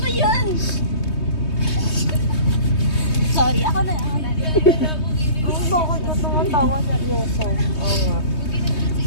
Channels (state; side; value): late; right; 3.2 ms